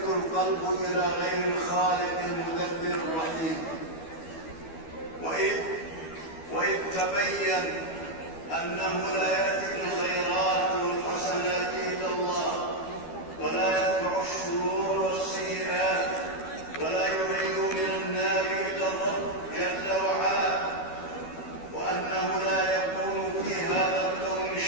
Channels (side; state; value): right; late; 12 ms